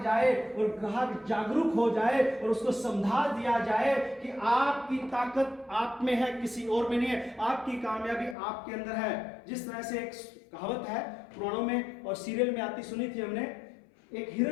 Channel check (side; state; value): right; drops out; at 8.3 s